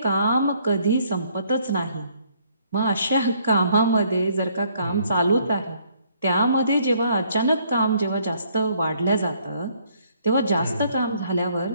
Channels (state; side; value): inverted; both; correlation -0.66